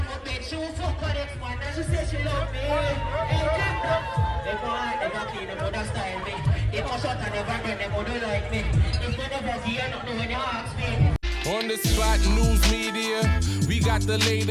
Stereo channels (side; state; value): both; identical; correlation 1.00